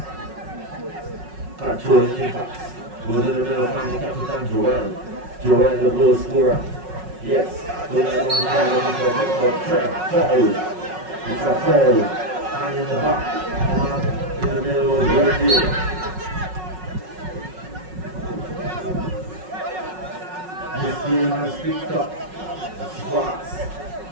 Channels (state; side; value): late; left; 5.4 ms